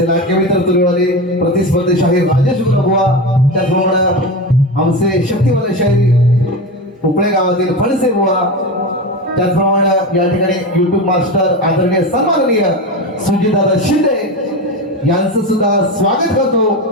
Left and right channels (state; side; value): normal; both; correlation 0.22